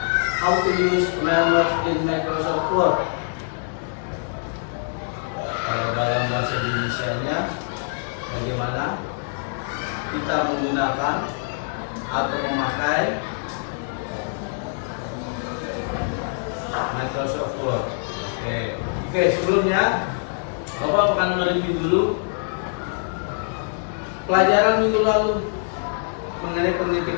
how to use Melmerge in Microsoft Word. Kalau dalam bahasa Indonesianya, bagaimana kita menggunakan atau memakai Microsoft Word. Oke, sebelumnya Bapak akan mereview dulu pelajaran minggu lalu mengenai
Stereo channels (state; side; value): silent; right; digital silence